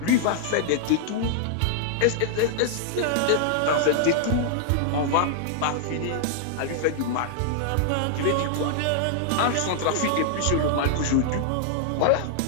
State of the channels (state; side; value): different; both; correlation -0.01